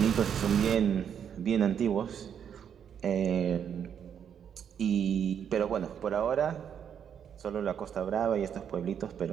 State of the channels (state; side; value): quieter; left; 8.3 dB